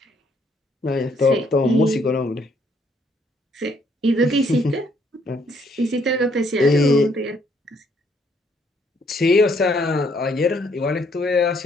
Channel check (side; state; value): both; normal; correlation 0.68